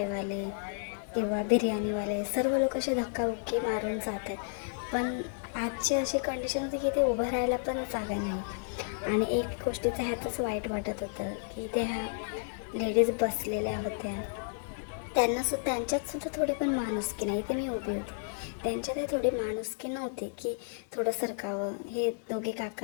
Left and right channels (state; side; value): silent; right; digital silence